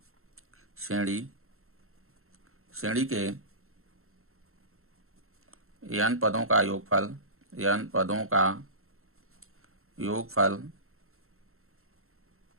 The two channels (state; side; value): late; left; 0.62 ms